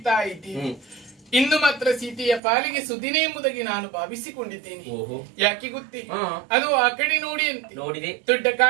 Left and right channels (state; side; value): drops out; left; at 2.4 s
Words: ಇದ್ದೀನಿ. ಇಂದು ಮಾತ್ರ ಸೀತೆಯ ಪಾಲಿಗೆ ಸುದಿನ ಎಂಬುದಾಗಿ ನಾನು ಭಾವಿಸಿಕೊಂಡಿದ್ದೇನೆ. ಯಾಕೆ ಗೊತ್ತೇ? ಅದು ಆ ಕಡೆ ನೋಡಿ ಅಂತೆ ದೊಡ್ಡ